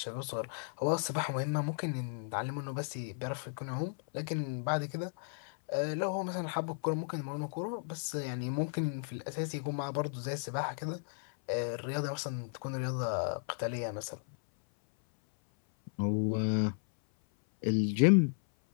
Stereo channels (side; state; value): right; silent; 55 dB below the other